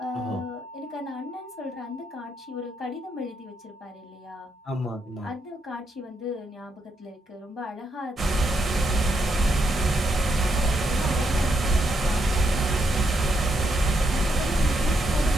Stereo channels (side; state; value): both; normal; correlation 0.80